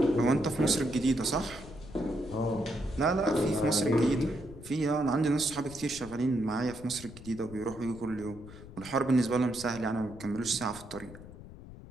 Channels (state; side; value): noise; left; rumble, 16 dB below the sound